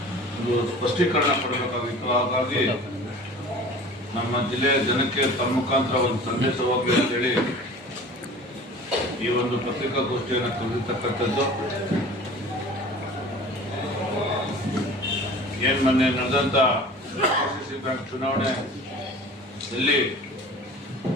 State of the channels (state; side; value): normal; both; correlation 0.42